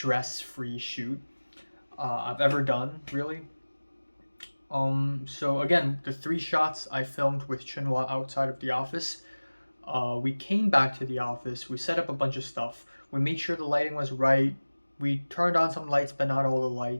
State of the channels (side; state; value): both; inverted; correlation -1.00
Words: shoot I've ever done, really. So again, the 3 shots I filmed with Chunhua outside of the office. We came back to the office. We set up a bunch of stuff. We made sure the lighting was right. We turned on some lights, but not all the